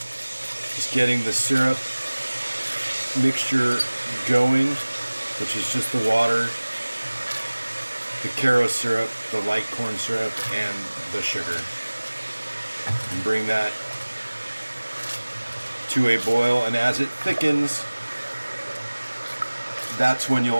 just getting the syrup mixture going, which is just the water, the Caro syrup, the light corn syrup, and the sugar. And bring that to a boil, and as it thickens, that's when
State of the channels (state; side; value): inverted; both; correlation -1.00